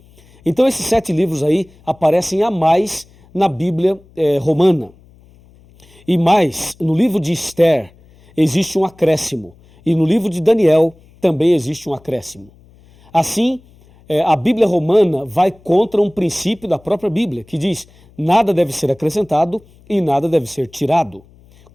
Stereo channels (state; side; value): noise; left; hum, 28 dB below the sound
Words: Então esses 7 livros aí aparecem a mais na Bíblia romana. E mais, no livro de Esther existe um acréscimo. E no livro de Daniel também existe um acréscimo. Assim, a Bíblia romana vai contra um princípio da própria Bíblia, que diz: nada deve ser acrescentado e nada deve ser tirado.